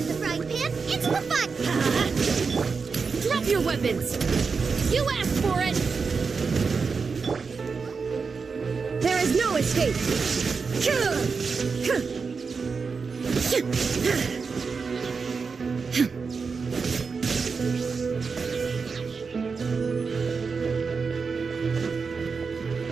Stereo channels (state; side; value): quieter; left; 5.1 dB